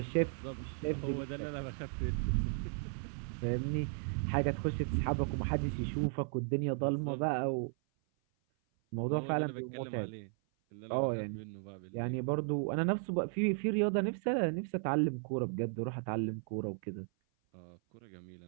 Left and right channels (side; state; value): left; silent; 54 dB below the other